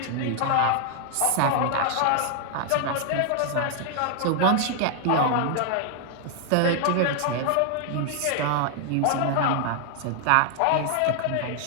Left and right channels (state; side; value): different; both; correlation 0.00